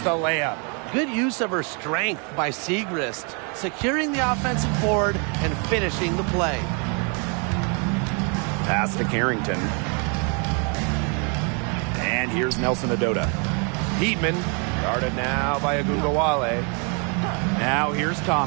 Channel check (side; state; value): left; quieter; 35.8 dB